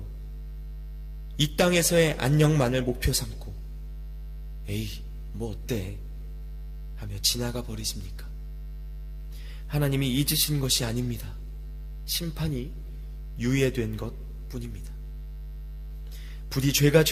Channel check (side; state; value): both; identical; correlation 1.00